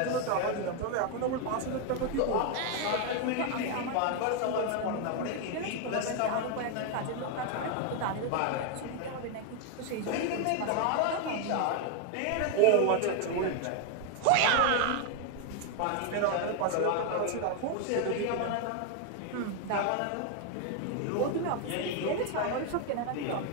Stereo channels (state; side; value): different; both; correlation 0.01